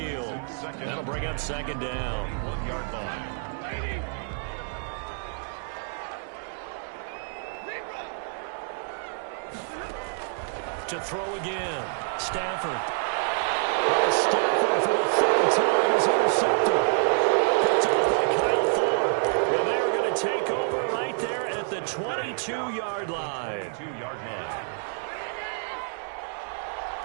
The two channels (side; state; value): left; silent; 60 dB below the other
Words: That'll bring up 2nd down. 1-yard line. To throw again. Stafford. And Stafford for the 3rd time is intercepted. Picked off by Kyle Fuller. And they're going to take over right there at the 22-yard line. 2-yard line.